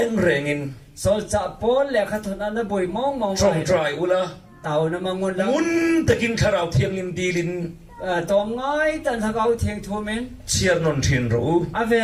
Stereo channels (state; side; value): identical; both; correlation 1.00